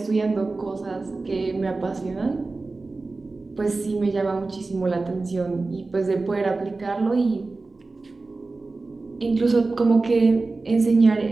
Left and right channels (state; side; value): quieter; left; 3.6 dB